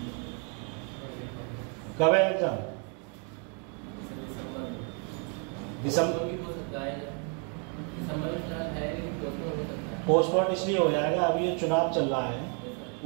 कब है एग्जाम? दिसंबर। पोस्टपोन इसलिए हो जाएगा, अभी ये चुनाव चल रहा है,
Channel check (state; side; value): quieter; left; 39.2 dB